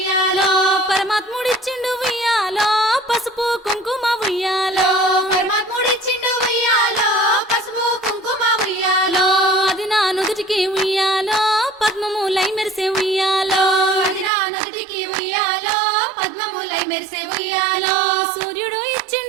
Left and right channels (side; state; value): left; drops out; at 14.3 s